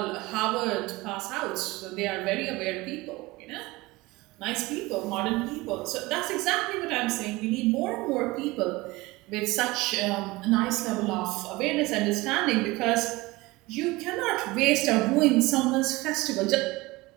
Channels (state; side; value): quieter; left; 21.4 dB